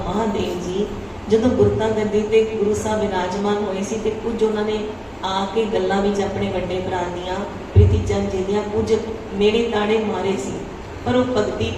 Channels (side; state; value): both; identical; correlation 1.00